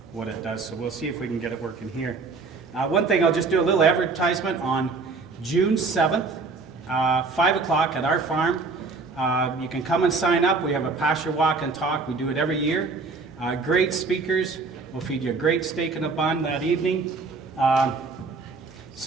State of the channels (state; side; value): quieter; left; 4.2 dB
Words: does. So we'll see if we can get it working here. One thing, I'll just do a little advertisement on June 7th, 5 o'clock at our farm. You can come and sign up. We have a pasture walk and talk. We do it every year. Great speakers. We'll feed you a great steak and a bun that evening.